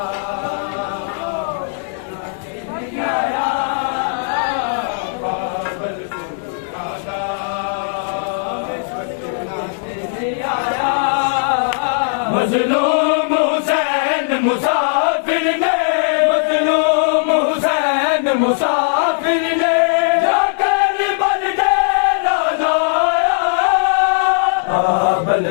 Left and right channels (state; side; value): silent; right; digital silence